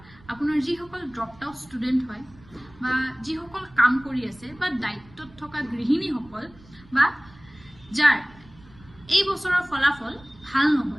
আপোনাৰ যিসকল ড্ৰপড আউট ষ্টুডেণ্ট হয় বা যিসকল কাম কৰি আছে বা দায়িত্বত থকা গৃহিণীসকল বা যাৰ এই বছৰৰ ফলাফল ভাল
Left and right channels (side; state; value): right; noise; rumble, 24 dB below the sound